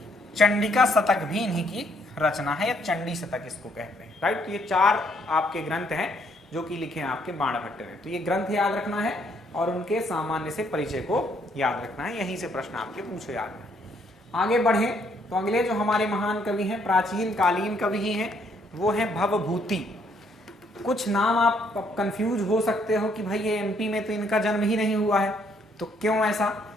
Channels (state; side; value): normal; both; correlation 0.69